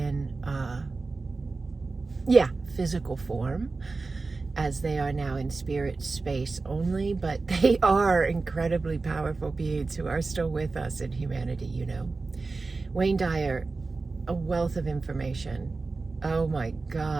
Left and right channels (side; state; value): left; quieter; 3.8 dB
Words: physical form, as they are now in spirit space only, but they are incredibly powerful beings who are still with us in humanity, you know. Wayne Dyer, a wealth of information. Oh my